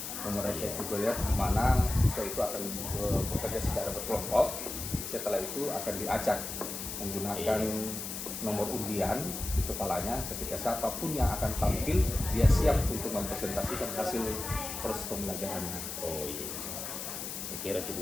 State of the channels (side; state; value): left; noise; hiss, 6 dB below the sound